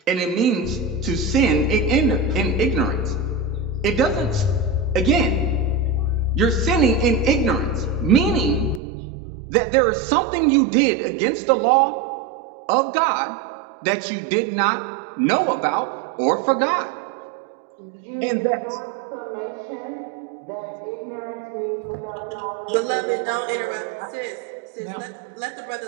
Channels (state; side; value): drops out; left; at 8.8 s